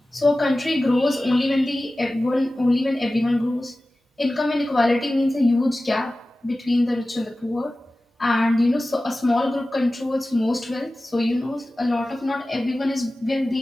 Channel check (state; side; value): normal; both; correlation 0.96